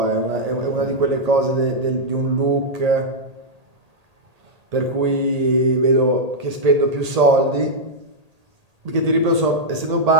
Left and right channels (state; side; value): late; left; 1.8 ms